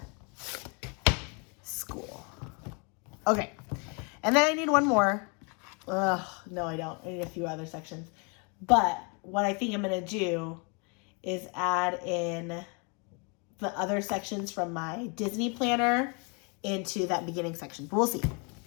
school. Okay, and then I need one more. Ugh, no, I don't. I need a few other sections. But what I think I'm going to do is add in the other sections from my Disney planner into that beginning section. But we'll see.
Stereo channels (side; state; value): right; quieter; 34.1 dB